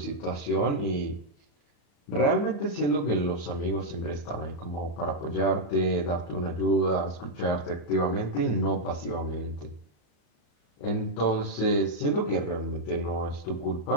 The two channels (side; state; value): right; late; 35 ms